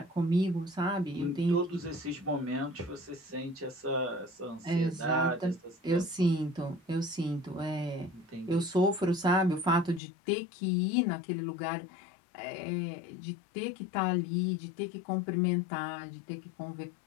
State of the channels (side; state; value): right; drops out; at 10.0 s